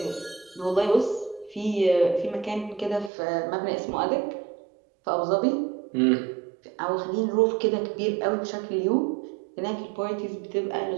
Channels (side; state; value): left; drops out; at 3.1 s